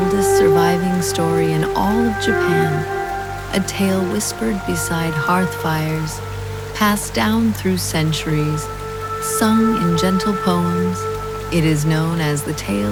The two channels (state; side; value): identical; both; correlation 1.00